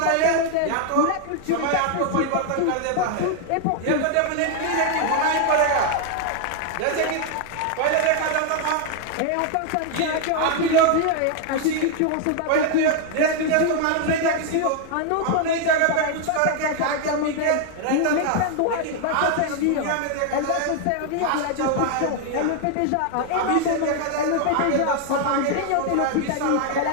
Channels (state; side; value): different; both; correlation 0.00